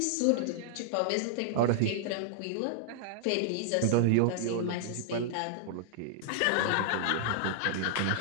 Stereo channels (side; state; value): both; different; correlation -0.01